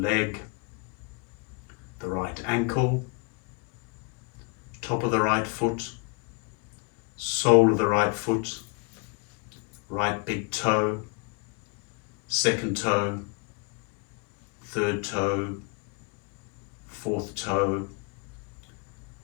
the right ankle, top of the right foot, sole of the right foot, right big toe, second toe, third toe, fourth toe,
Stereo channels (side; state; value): right; quieter; 32.7 dB